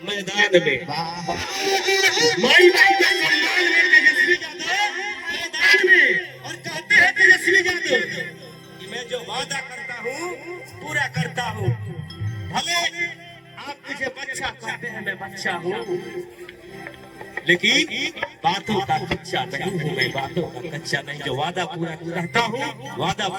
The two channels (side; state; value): both; identical; correlation 1.00